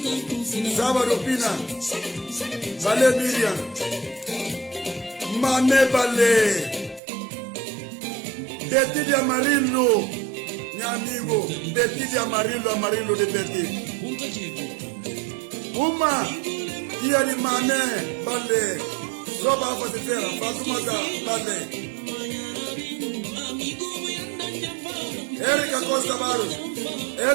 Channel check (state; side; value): drops out; left; at 7.0 s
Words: Sábado Pina, Valé Miriam, Mame Balé, Betty de Amarillo, meu amigo, Betty de Amarillo, Amarillo de Betty. Uma, dia de Mané, Balé, Roba Fatifera, Fatumata, Balé. Erika Costa Barros,